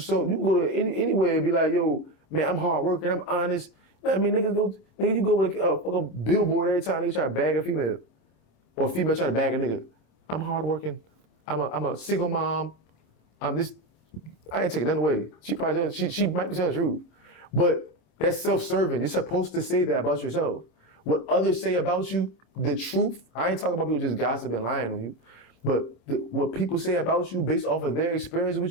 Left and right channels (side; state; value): right; late; 26 ms